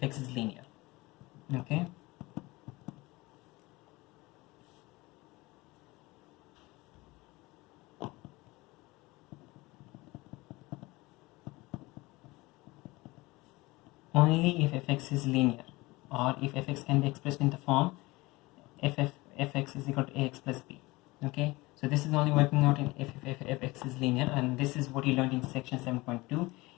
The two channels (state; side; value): quieter; right; 21.7 dB